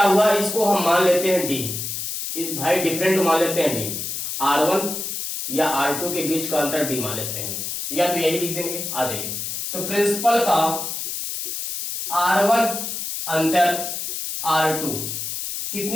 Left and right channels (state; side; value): noise; left; hiss, 4 dB below the sound